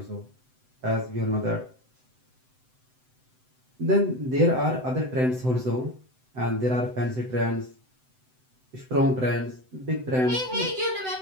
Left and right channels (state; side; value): late; left; 7.8 ms